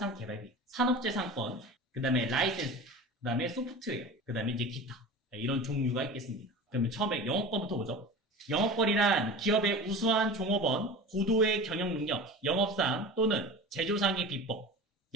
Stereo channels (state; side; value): normal; both; correlation 0.34